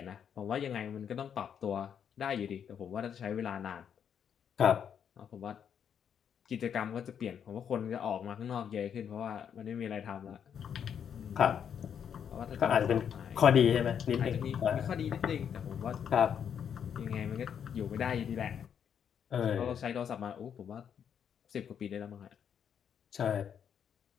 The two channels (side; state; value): right; quieter; 8.1 dB